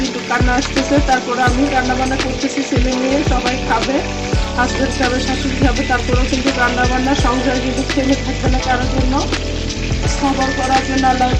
কিন্তু কান্না আসতেছে। তারপরে আমি রান্না বান্না করতেছি, ছেলে নিয়ে সবাই খাবে, হাজবেন্ড খাবে, শাশুড়ি খাবে। তারপরেও কিন্তু রান্না বান্না সংসার কিন্তু থেমে থাকবে না কারোর জন্য। সবর করার জন্য আল্লাহ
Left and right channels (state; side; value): identical; both; correlation 1.00